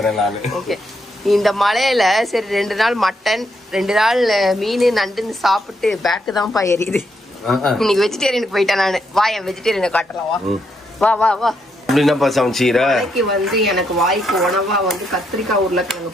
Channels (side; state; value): both; normal; correlation 0.78